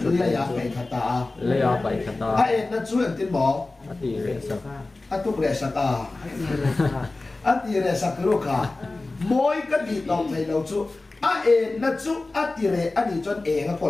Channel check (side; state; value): right; quieter; 3.2 dB